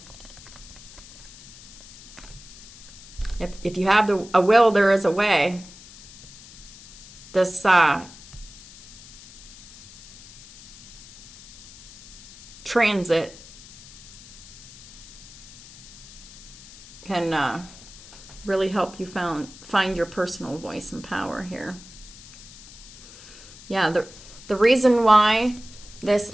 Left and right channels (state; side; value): noise; left; hiss, 19 dB below the sound